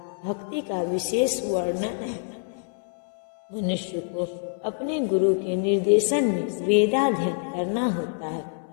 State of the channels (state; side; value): silent; right; 61 dB below the other